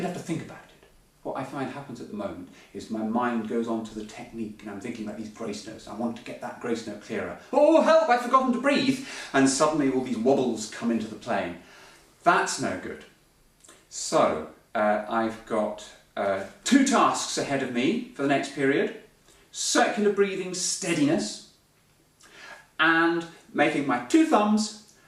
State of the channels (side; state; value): both; identical; correlation 1.00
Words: have to think about it. What I find happens at the moment is my mind goes on to the technique, and I'm thinking about these grace notes. I want to get that grace note clearer. Oh help, I've forgotten to breathe! And suddenly all these wobbles come into the playing. That's no good. So I've got 2 tasks ahead of me for the next period. Circular breathing steadiness, and making my 2 thumbs